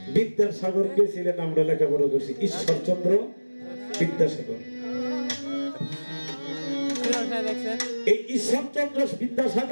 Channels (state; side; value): inverted; both; correlation -1.00